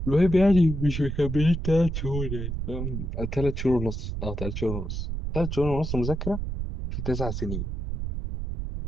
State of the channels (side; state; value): right; noise; rumble, 4 dB below the sound